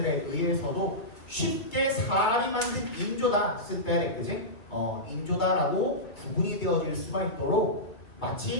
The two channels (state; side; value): late; right; 2.7 ms